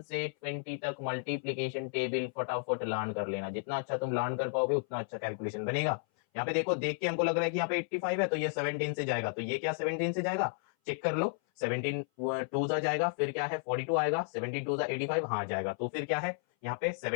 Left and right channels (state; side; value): silent; right; 56 dB below the other